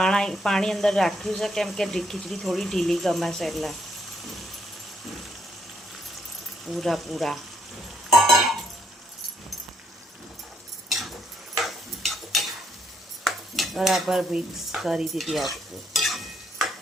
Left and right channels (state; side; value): normal; both; correlation 0.72